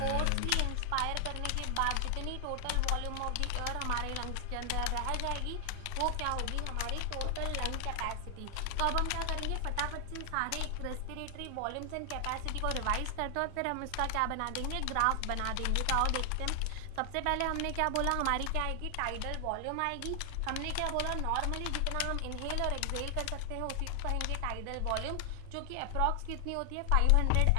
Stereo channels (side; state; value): both; different; correlation 0.00